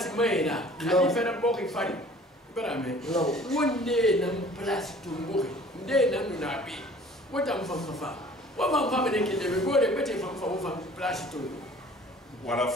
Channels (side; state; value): both; normal; correlation 0.50